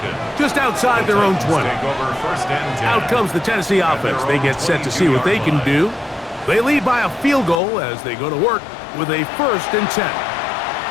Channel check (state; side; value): drops out; right; at 7.6 s